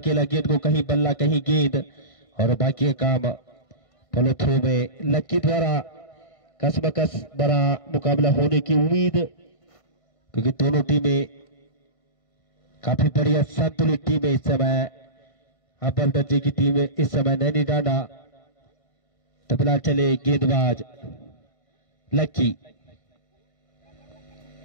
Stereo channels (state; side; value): late; right; 1.5 ms